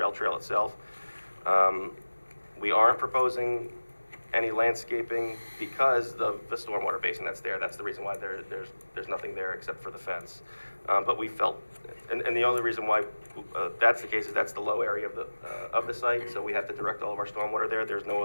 trail itself. We aren't proposing any landscaping because of the stormwater basin that's there. That's the reason why there's nothing there except for the fence. But we felt, and the only reason why that's the case is that's the low area of the site, so we have to direct all of our stormwater there. There's no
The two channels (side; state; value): both; inverted; correlation -1.00